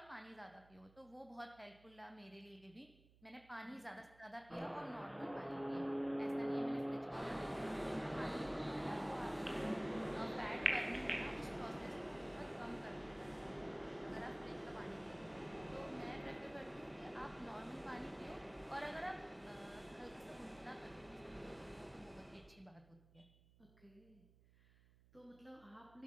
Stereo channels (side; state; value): right; noise; hum, 25 dB below the sound